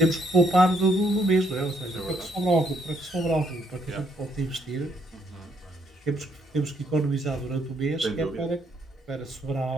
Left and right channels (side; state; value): both; normal; correlation 0.71